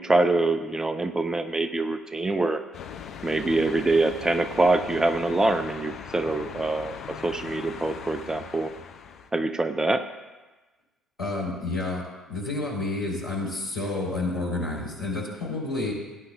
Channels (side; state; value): both; normal; correlation 0.81